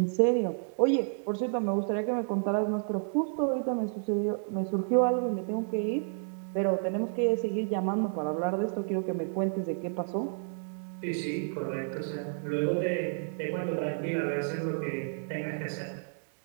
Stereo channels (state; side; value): silent; left; digital silence